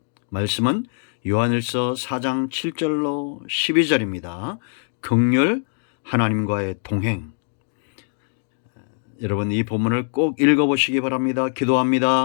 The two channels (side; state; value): right; silent; digital silence